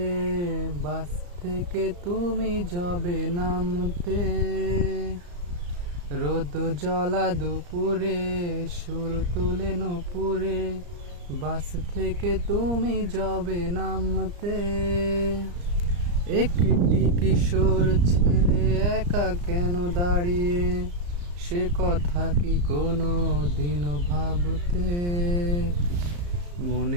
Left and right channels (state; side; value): late; left; 34 ms